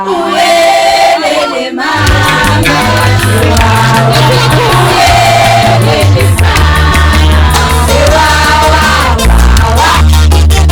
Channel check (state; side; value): identical; both; correlation 1.00